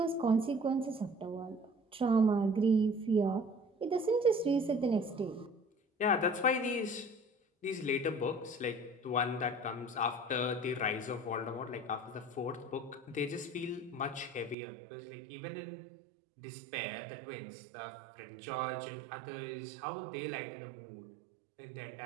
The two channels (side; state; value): left; drops out; at 14.6 s